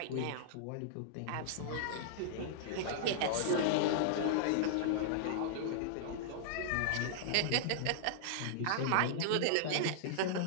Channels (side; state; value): both; different; correlation -0.01